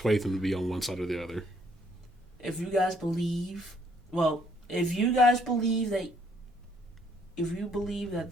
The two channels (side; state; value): both; normal; correlation 0.67